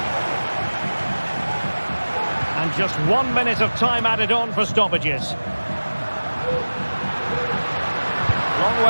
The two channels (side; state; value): both; inverted; correlation -1.00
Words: And just 1 minute of time added on for stoppages. Long